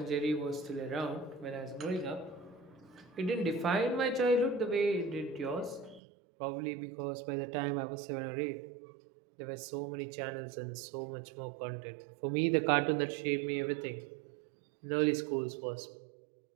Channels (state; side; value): drops out; left; at 6.0 s